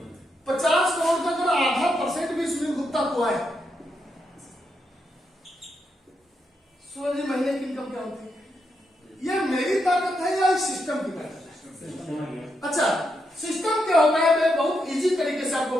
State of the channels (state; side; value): normal; both; correlation 0.82